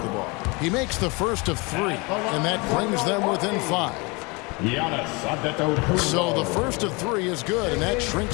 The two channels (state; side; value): quieter; right; 27.8 dB